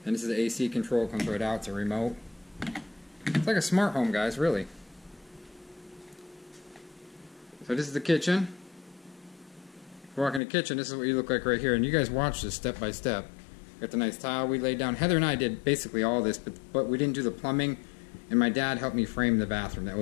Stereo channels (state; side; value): drops out; right; at 10.4 s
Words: And this is the AC control. It comes right out. It's a remote. It's like a smart home, guys, really. So this is the kitchen. If you walk in the kitchen, this is what you look like right here. And you guys watch this step by step. Got the nice tile we laid down. Heather and I did basically all this, but we didn't do the plumbing. And my dad helped me frame the bathroom. That